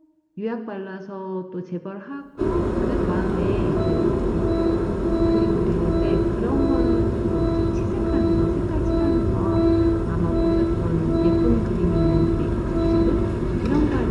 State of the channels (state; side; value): identical; both; correlation 1.00